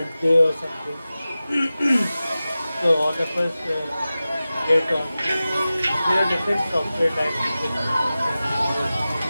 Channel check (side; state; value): both; inverted; correlation -0.96